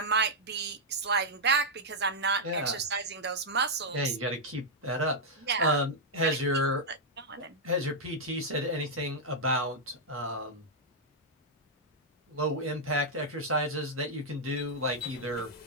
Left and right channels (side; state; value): both; normal; correlation -0.05